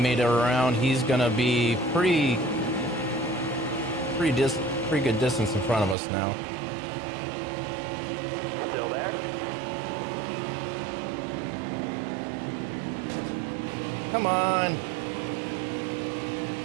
it around. He's gonna be pretty good distance in front of us now. Still there. Come on.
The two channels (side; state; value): left; drops out; at 6.0 s